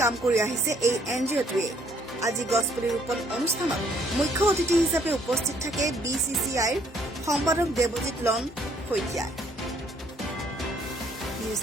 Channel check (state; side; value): normal; both; correlation 0.65